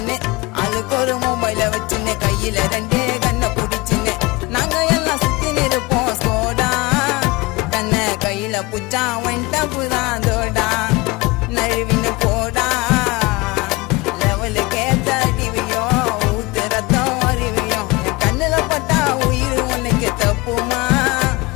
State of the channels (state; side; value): quieter; right; 23.1 dB